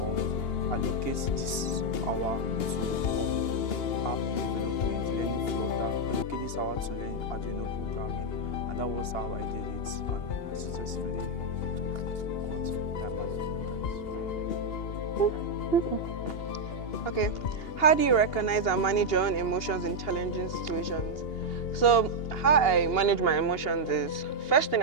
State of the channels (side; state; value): right; late; 2.8 ms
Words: allocate this hour to app development, learning Flutter, allocate this hour to learn Arduino programming, and that was how I did it, and I successfully got time management. Okay, how do you recognize and manage your own emotions in challenging situations? So how I manage my emotions is, first thing